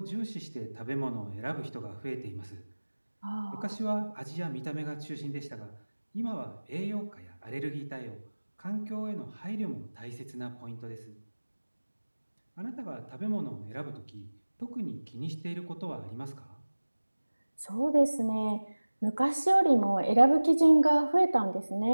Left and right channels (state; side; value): inverted; both; correlation -1.00